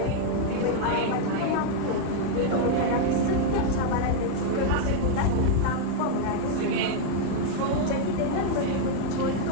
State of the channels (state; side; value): different; both; correlation 0.00